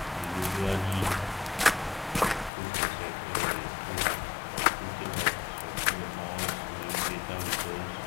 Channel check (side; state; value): right; drops out; at 2.5 s